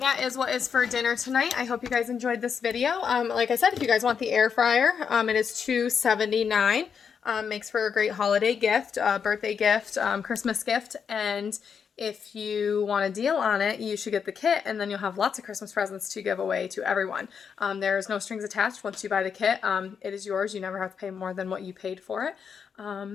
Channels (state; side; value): quieter; right; 6.7 dB